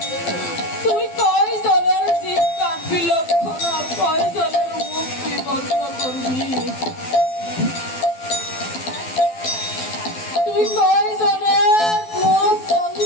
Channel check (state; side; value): late; right; 12 ms